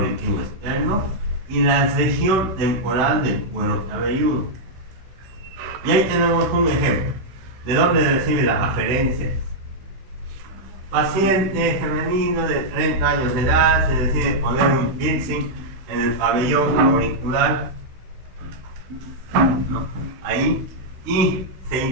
externo y la región temporal del cuero cabelludo. Y ahí tenemos un ejemplo. ¿De dónde recibe la aferencia? Paciente femenino de 30 años de edad se decide poner un piercing en el pabellón auricular, ¿no? Ahí, y se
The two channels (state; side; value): late; left; 16 ms